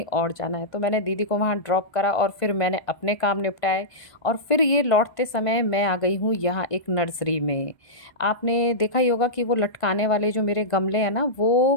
और जाना है, तो मैंने दीदी को वहाँ ड्रॉप करा और फिर मैंने अपने काम निपटाए। और फिर ये लौटते समय मैं आ गई हूँ यहाँ एक नर्सरी में। आपने देखा ही होगा कि वो लटकाने वाले जो मेरे गमले हैं ना, वो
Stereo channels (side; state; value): right; late; 1.5 ms